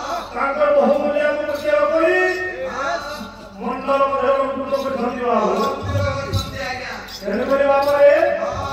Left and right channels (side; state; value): both; identical; correlation 1.00